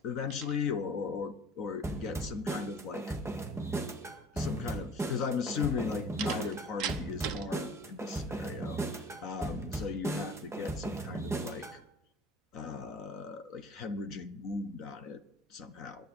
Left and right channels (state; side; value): normal; both; correlation 0.46